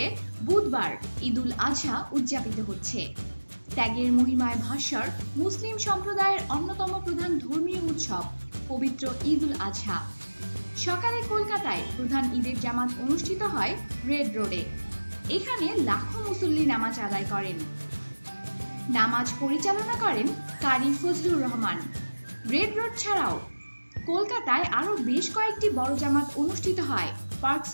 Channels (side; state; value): both; inverted; correlation -1.00